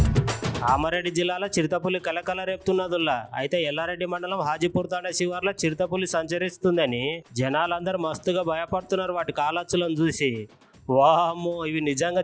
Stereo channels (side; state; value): both; identical; correlation 1.00